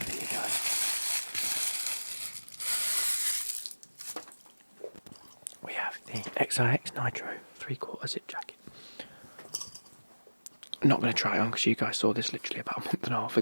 for you guys. We have the XIX Nitro 3/4 zip jacket. I'm not going to try it on because you guys saw this literally about a month and a half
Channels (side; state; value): both; inverted; correlation -1.00